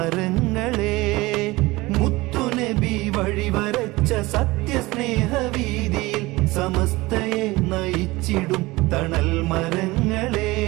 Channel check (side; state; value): left; quieter; 20.9 dB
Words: മുത്തുനബി വഴിവരച്ച സത്യസ്നേഹവീതിയിൽ സമസ്തയെ നയിച്ചിടും തണൽ മരങ്ങളെ,